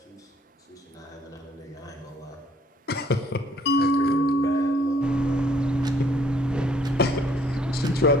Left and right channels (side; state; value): both; normal; correlation 0.62